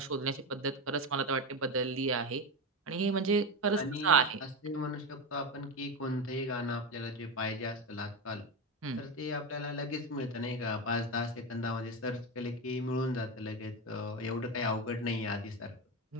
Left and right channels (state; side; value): normal; both; correlation 0.16